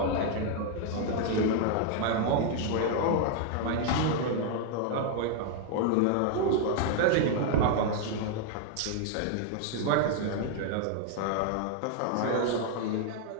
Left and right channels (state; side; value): different; both; correlation 0.00